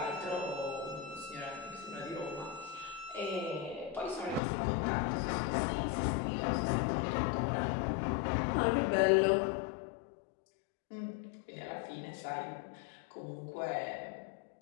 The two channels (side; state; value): right; drops out; at 4.4 s